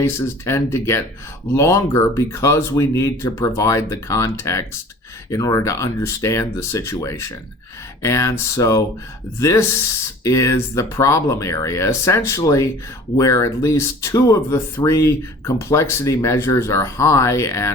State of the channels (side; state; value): both; normal; correlation 0.46